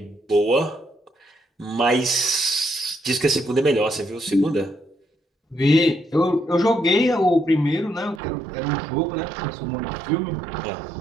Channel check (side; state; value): left; drops out; at 8.2 s